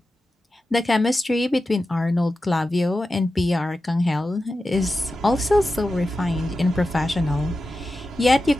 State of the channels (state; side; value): normal; both; correlation 0.92